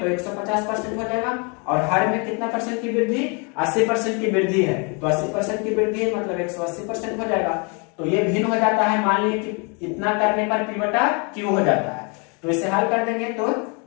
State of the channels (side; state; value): right; quieter; 33.7 dB